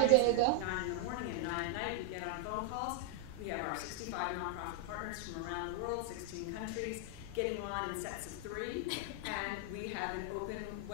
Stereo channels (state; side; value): different; both; correlation 0.00